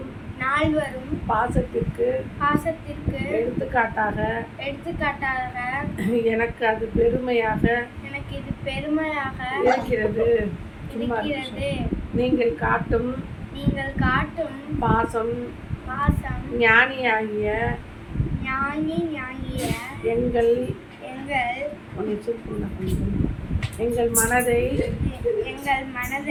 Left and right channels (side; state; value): both; identical; correlation 1.00